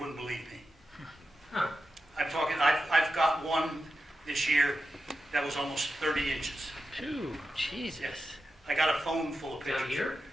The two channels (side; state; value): both; normal; correlation 0.90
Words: believe me. Huh. I've got one this year that was almost 30 inches. Phew, Jesus. I got a phone full of Down pictures. here?